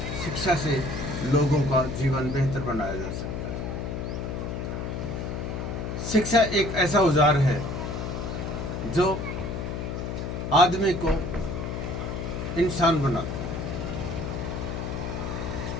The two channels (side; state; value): left; noise; hum, 4 dB below the sound